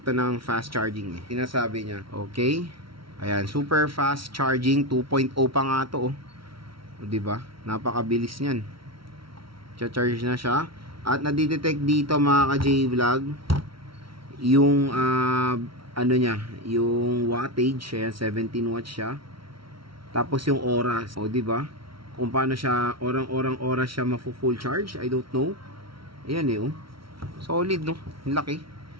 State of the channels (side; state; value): left; late; 0.74 ms